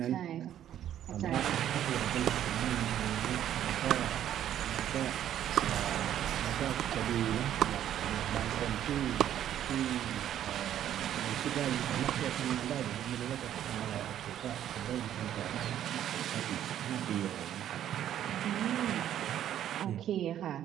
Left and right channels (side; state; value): left; quieter; 11.0 dB